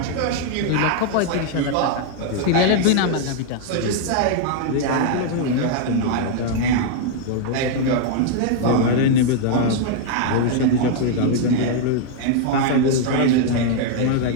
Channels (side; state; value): both; different; correlation 0.00